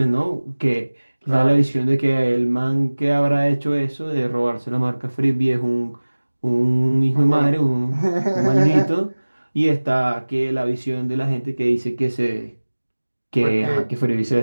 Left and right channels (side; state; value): both; inverted; correlation -1.00